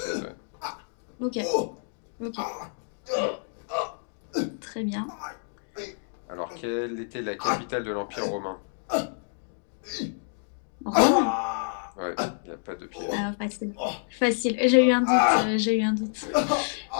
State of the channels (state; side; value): silent; right; 59 dB below the other